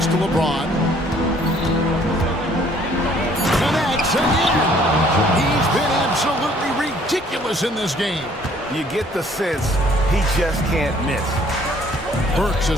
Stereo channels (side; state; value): both; normal; correlation 0.59